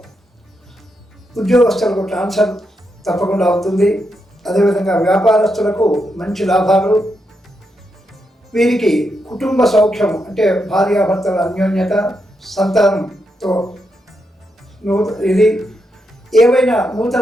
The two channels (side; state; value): both; normal; correlation 0.83